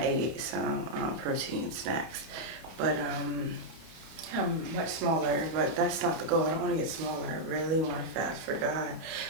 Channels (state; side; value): late; left; 31 ms